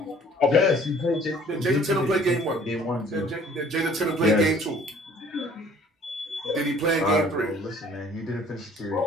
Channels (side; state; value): both; normal; correlation 0.54